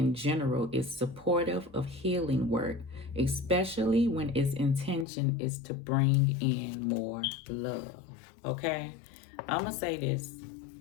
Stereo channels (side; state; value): right; drops out; at 5.1 s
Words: general is supportive of healing work, especially when its intention is to bring in more love. Okay? I'm going to say this.